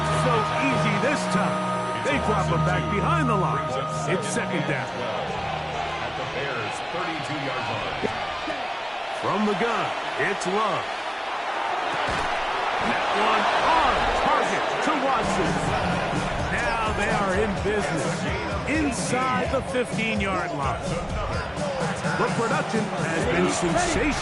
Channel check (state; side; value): identical; both; correlation 1.00